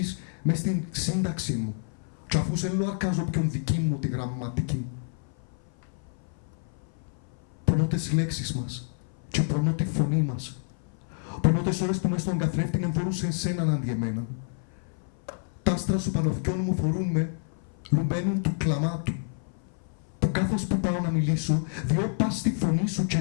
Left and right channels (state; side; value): silent; right; 57 dB below the other